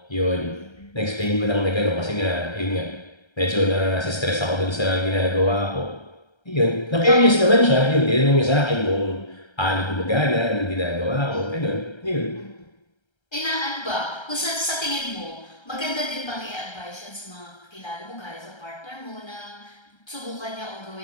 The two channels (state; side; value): late; right; 1.3 ms